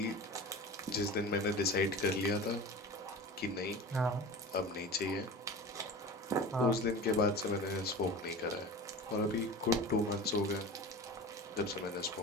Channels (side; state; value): both; normal; correlation 0.34